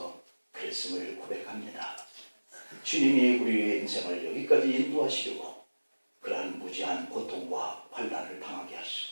그랬음을 고백합니다. 주님이 우리의 인생을 여기까지 인도하시려고 그러한 무지한 고통과 환난을 당하게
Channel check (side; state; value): both; inverted; correlation -1.00